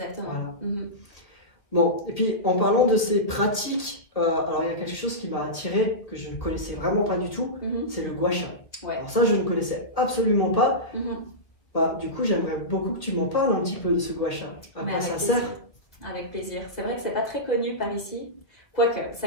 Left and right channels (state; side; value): late; right; 1.7 ms